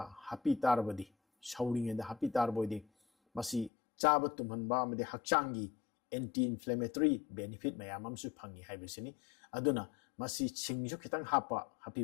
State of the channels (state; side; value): drops out; right; at 3.7 s